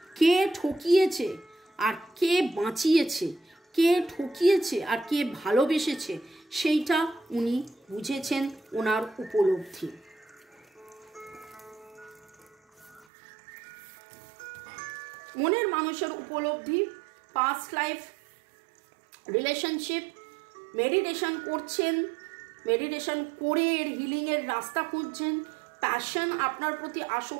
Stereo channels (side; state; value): left; drops out; at 13.1 s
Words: কে ঠকিয়েছে আর কে বাঁচিয়েছে, কে ঠকিয়েছে আর কে ভালোবেসেছে, সেইটা উনি বুঝেছেন, ওনার উপলব্ধি। মনের মানুষের উপলব্ধি, পাস্ট লাইফ, রিলেশনশিপ, মেডিটেশন করছেন, মেডিটেশন করে এর হিলিংয়ের রাস্তা খুঁজছেন, প্যাশন, আপনার প্রতি